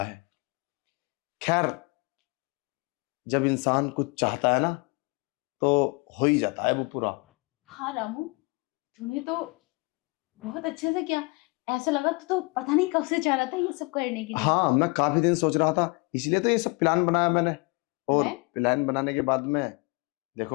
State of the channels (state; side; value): quieter; right; 27.7 dB